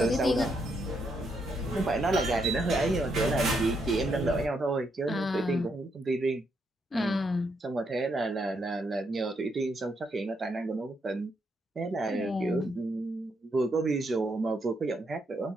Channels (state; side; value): normal; both; correlation 0.78